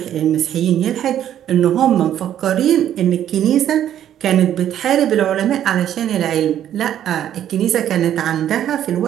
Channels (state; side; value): quieter; left; 10.8 dB